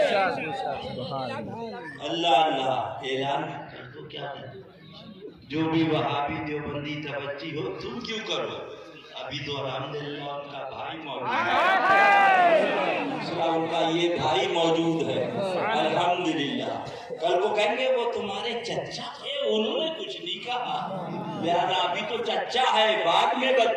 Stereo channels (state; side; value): identical; both; correlation 1.00